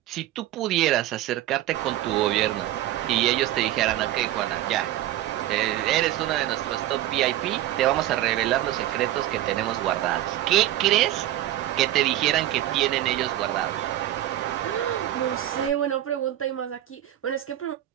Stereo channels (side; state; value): left; quieter; 13.7 dB